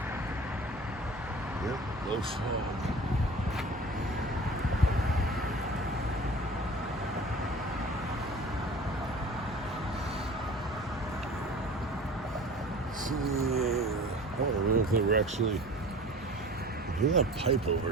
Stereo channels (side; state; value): both; normal; correlation 0.42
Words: Yep, no fog. See, I don't know if they were actually. I hear that pipe over